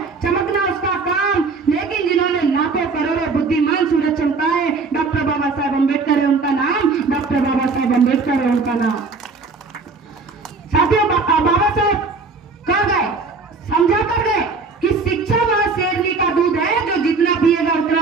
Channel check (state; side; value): quieter; left; 4.2 dB